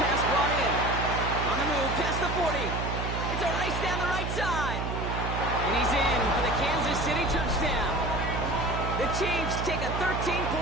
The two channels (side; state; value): right; noise; hum, 3 dB below the sound